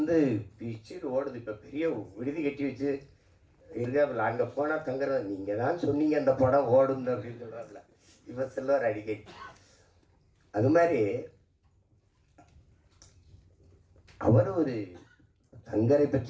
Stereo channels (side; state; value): both; identical; correlation 1.00